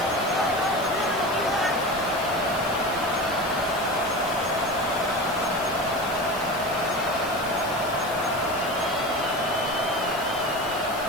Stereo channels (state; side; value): noise; left; hiss, 15 dB below the sound